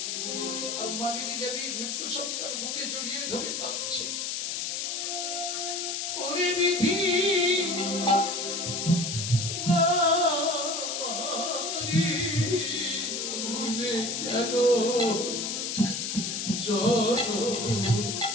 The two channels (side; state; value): left; noise; hiss, 2 dB below the sound